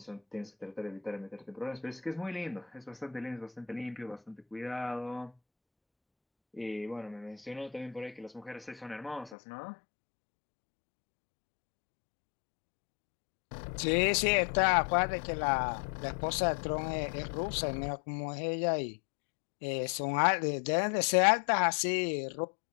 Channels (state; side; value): drops out; right; at 9.3 s